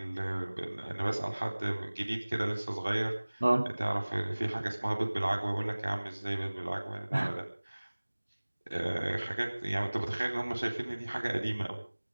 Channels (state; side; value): inverted; both; correlation -1.00